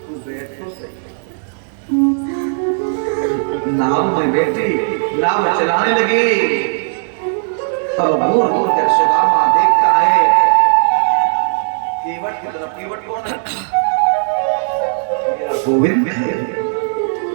बैठ तो सही। नाव में बैठी, नाव चलाने लगी। तब घूर घूर कर सुदामा देखता है केवट की तरफ। केवट कौन है? गोविंद है।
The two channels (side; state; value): left; silent; digital silence